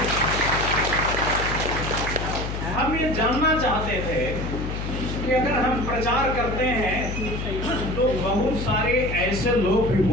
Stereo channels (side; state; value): left; noise; hum, 5 dB below the sound